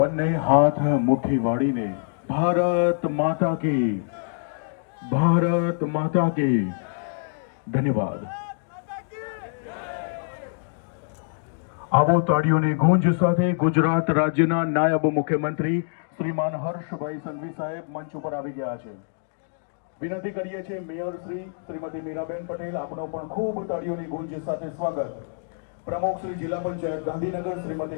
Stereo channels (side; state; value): right; silent; digital silence